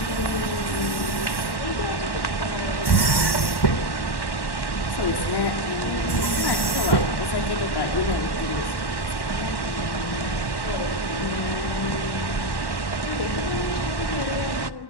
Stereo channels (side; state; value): right; late; 1.1 ms